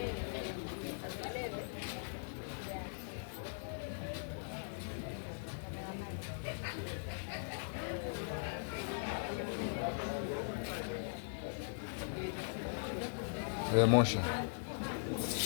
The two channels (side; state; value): right; silent; digital silence